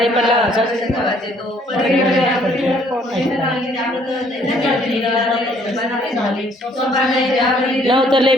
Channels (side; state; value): both; normal; correlation 0.63